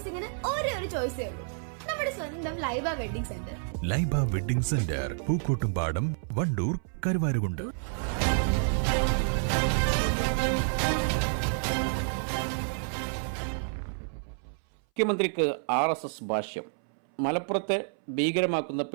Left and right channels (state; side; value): silent; left; 58 dB below the other